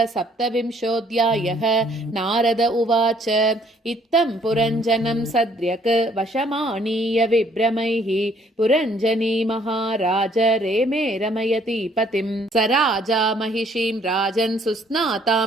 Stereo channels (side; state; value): both; normal; correlation 0.63